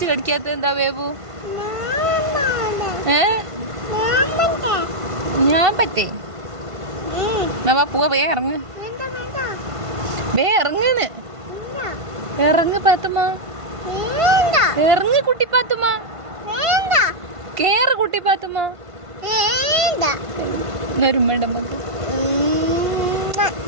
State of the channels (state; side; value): late; left; 1.5 ms